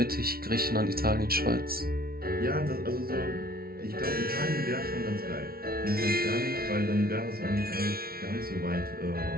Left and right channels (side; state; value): left; late; 0.44 ms